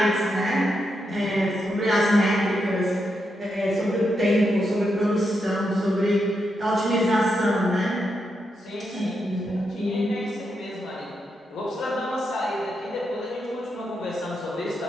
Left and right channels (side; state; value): both; normal; correlation 0.83